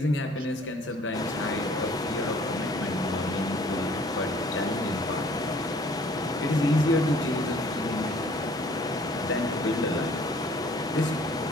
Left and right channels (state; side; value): normal; both; correlation 0.56